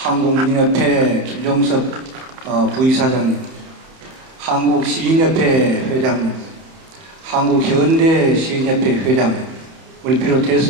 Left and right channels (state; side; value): late; left; 31 ms